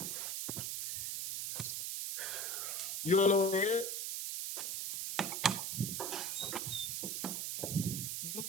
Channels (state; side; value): noise; right; hiss, 2 dB below the sound